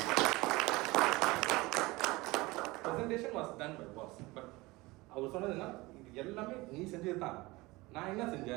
Presentation was done by boss. But அவர் சொன்னதுன்னா இது எல்லாமே நீ செஞ்சது தான். நான் என்ன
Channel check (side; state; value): left; quieter; 21.8 dB